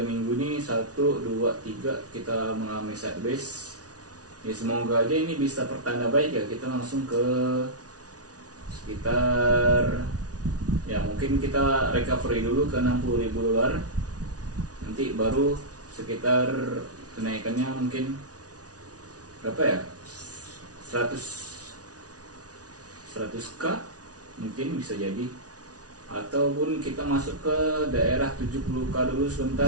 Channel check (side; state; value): left; late; 0.68 ms